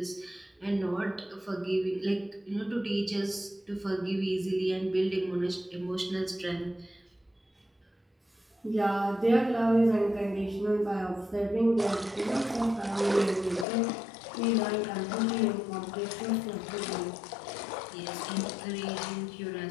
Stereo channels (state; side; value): drops out; right; at 13.7 s